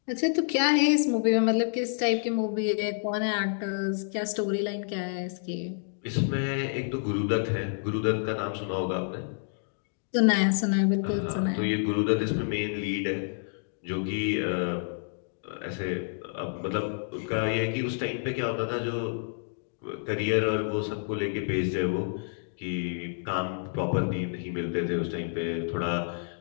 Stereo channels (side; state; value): right; silent; digital silence